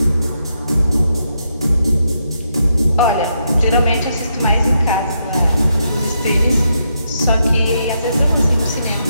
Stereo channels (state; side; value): inverted; both; correlation -0.80